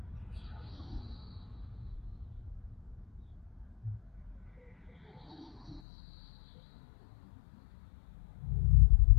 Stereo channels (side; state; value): right; drops out; at 5.8 s